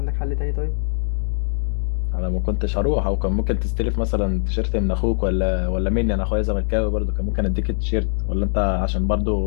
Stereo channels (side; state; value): right; silent; digital silence